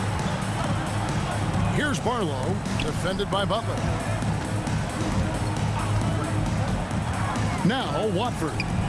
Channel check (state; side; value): identical; both; correlation 1.00